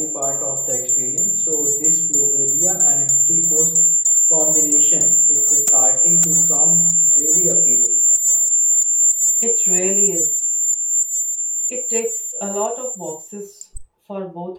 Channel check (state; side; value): identical; both; correlation 1.00